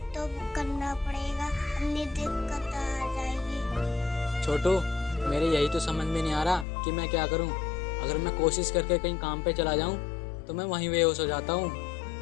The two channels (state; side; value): drops out; right; at 6.7 s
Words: तो करना पड़ेगा, अपनी दिक्कत आ जाएगी। छोटू, मेरे यही तो समझ में नहीं आ रहा कि मैं क्या करूं। अगर मैं कोशिश करके कहीं काम पे चला जाऊं तो मैं वहीं बेहोश हो जाता हूं।